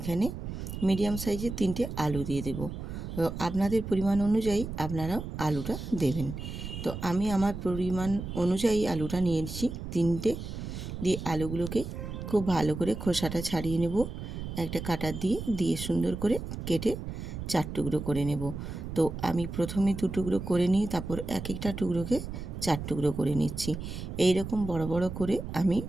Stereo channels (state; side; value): noise; right; rumble, 7 dB below the sound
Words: মিডিয়াম সাইজের 3টে আলু দিয়ে দেব। তো আপনাদের পরিমাণ অনুযায়ী আপনারাও আলুটা দেবেন। তো আমি আমার পরিমাণ অনুযায়ী আলুটা নিয়েছি 3টে। দিয়ে আলুগুলোকে খুব ভালো করে খোসাটা ছাড়িয়ে নেব, একটা কাটার দিয়ে সুন্দর করে কেটে 4 টুকরো করে নেব। তো আমি প্রথমে 2 টুকরো করে নিই, তারপর এক একটা টুকরোকে 4 টুকরো করে নিচ্ছি। এই রকম বড় বড় করে আমি